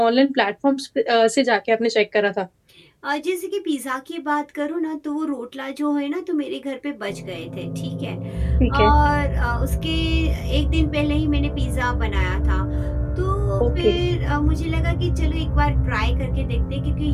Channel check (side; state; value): both; identical; correlation 1.00